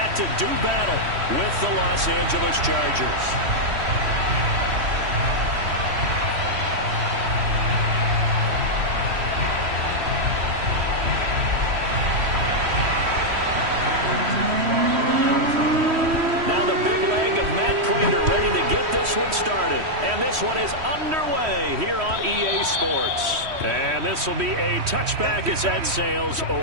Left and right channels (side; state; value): left; late; 3.1 ms